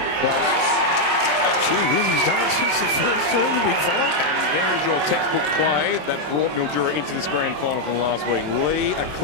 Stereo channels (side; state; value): left; late; 27 ms